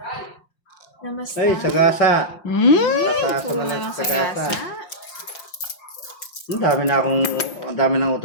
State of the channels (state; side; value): late; right; 5.7 ms